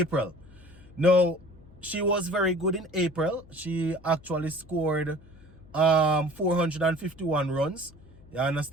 Now, she was very good in April. She actually scored 451 runs. You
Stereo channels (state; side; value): noise; left; hum, 24 dB below the sound